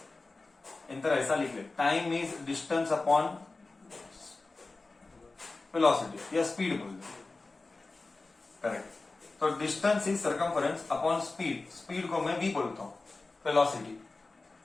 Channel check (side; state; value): right; quieter; 3.5 dB